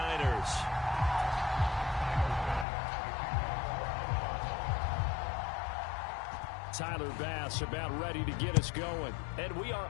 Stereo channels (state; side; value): drops out; right; at 2.7 s